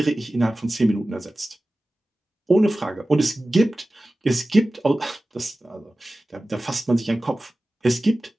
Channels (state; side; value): normal; both; correlation 0.96